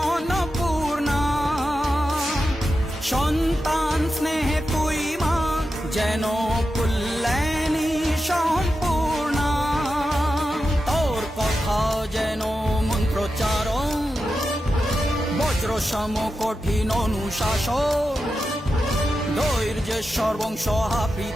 অন্নপূর্ণা। সন্তান স্নেহে তুই মা যেন কল্যাণী সম্পূর্ণা। তোর কথা যেন মন্ত্রোচ্চারণ, বজ্র সম কঠিন অনুশাসন। ধৈর্যেশ্বর বংশ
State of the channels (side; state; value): both; normal; correlation 0.90